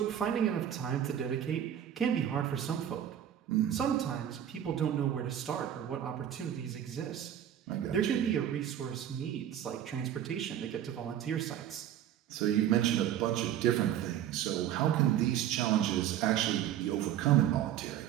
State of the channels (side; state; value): left; quieter; 10.6 dB